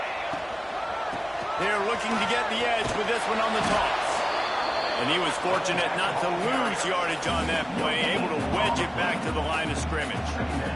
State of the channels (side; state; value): both; identical; correlation 1.00